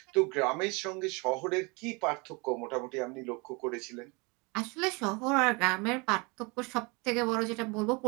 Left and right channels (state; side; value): quieter; left; 28.7 dB